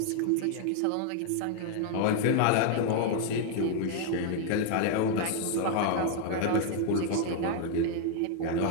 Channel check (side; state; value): both; different; correlation 0.00